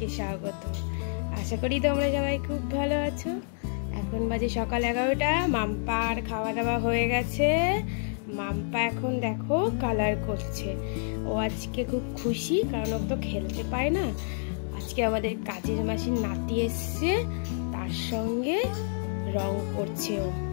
स्वागत। आशा करी तोमरा सबाई खूब भालो आछो। एखन बाजे सकाल 11टा। माम्पार खावा दावा हये गेछे। माम्पा एखन देखो कालार करछे। ओ आजके खूब खुशी कारण ओ तो खेलते पाय ना। आजके आमादेर काजेर मासिर नाती एसेछे तार संगे रंग करछे। ओ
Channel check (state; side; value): silent; right; digital silence